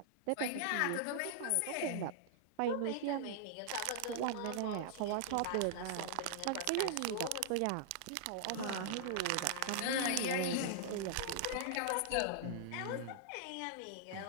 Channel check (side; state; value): both; different; correlation -0.01